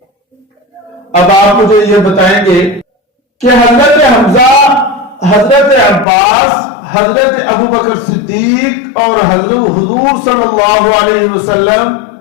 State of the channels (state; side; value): drops out; right; at 6.1 s